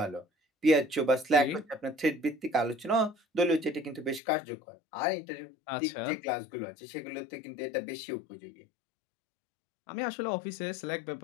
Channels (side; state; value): right; drops out; at 4.2 s